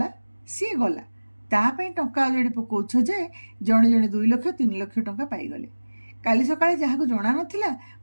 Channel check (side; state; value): both; inverted; correlation -1.00